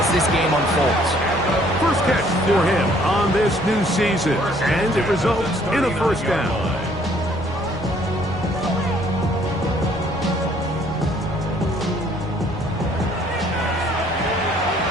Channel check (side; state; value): both; normal; correlation 0.61